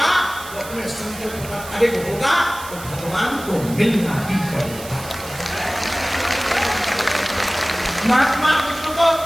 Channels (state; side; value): noise; right; hiss, 14 dB below the sound